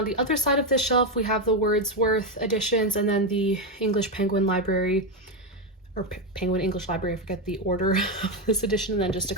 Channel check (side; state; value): both; normal; correlation 0.09